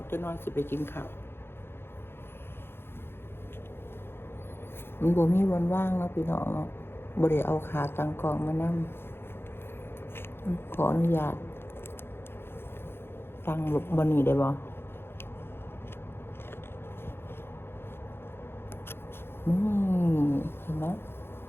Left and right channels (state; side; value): late; right; 0.11 ms